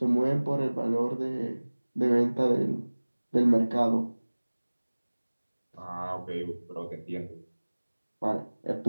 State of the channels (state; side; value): inverted; both; correlation -1.00